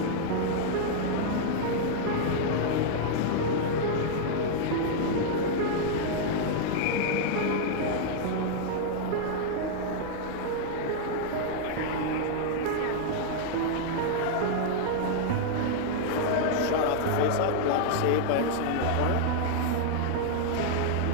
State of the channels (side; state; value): both; different; correlation -0.01